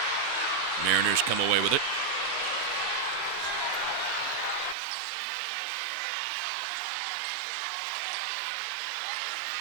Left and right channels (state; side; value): drops out; left; at 4.8 s